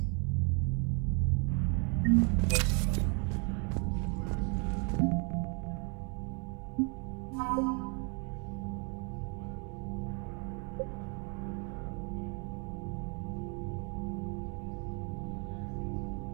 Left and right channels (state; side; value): quieter; left; 36.2 dB